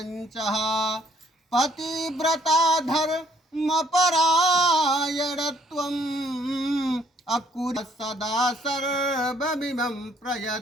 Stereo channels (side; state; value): both; normal; correlation 0.64